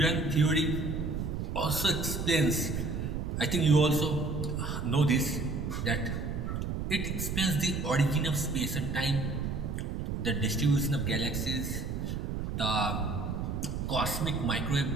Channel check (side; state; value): right; noise; rumble, 3 dB below the sound